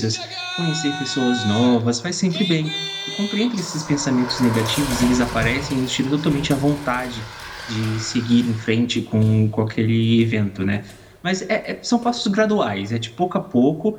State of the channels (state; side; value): identical; both; correlation 1.00